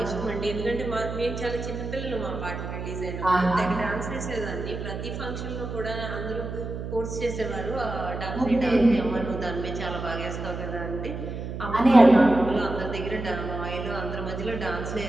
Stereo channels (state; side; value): noise; right; hum, 6 dB below the sound